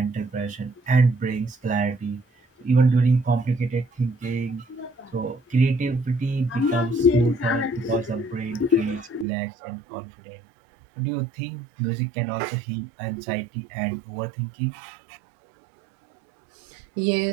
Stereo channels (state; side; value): drops out; left; at 9.2 s